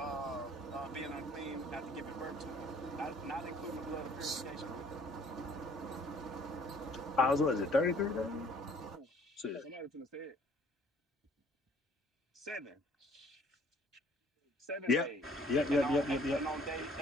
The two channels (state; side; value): normal; both; correlation 0.57